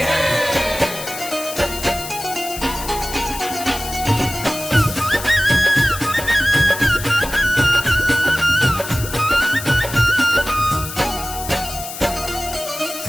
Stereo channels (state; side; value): noise; left; hiss, 10 dB below the sound